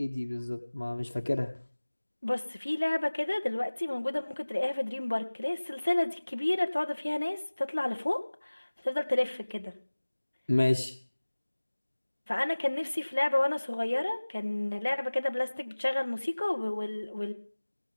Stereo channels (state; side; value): inverted; both; correlation -1.00